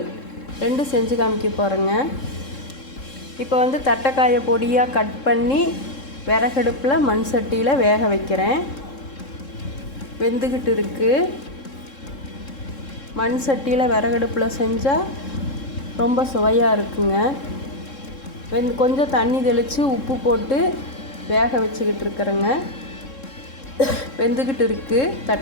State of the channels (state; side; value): late; right; 3.7 ms